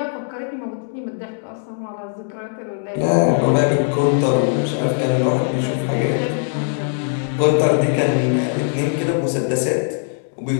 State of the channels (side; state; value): right; silent; digital silence